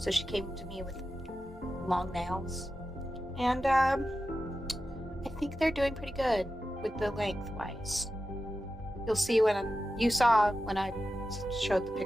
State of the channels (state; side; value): normal; both; correlation 0.92